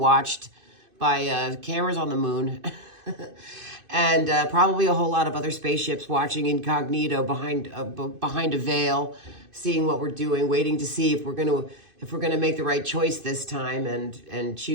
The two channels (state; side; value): late; left; 2.5 ms